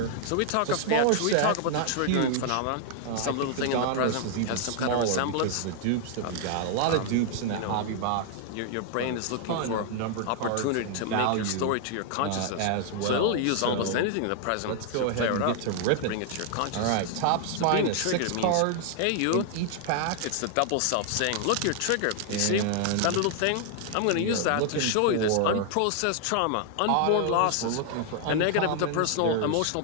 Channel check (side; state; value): both; different; correlation 0.00